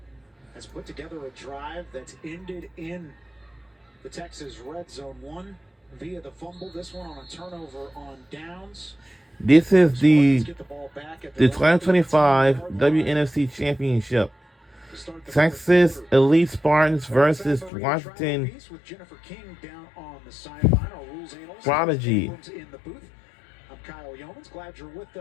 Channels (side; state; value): right; drops out; at 17.7 s